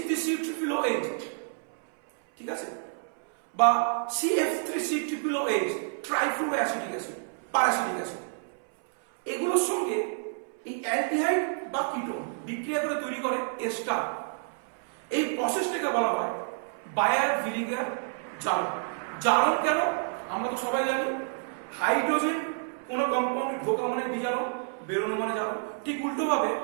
ঠিক আছে? বা CF3COOH, ট্রাইফ্লুরোঅ্যাসিডিক অ্যাসিড, প্যারাসিটিক অ্যাসিড। এগুলোর সঙ্গে এই অ্যালডিহাইড বা কিটোন বিক্রিয়া করে তৈরি করে এস্টার। এই প্রসেসটাকে বলা হয় বায়ার ভিনিগার জারণ। জারণ কেন? আমরা তো সবাই জানি, হাইড্রোজেন কোনো কম্পাউন্ডে ঢোকা মানে বিজারণ, বেরোনো মানে জারণ। ঠিক উল্টোভাবে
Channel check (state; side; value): silent; left; 59 dB below the other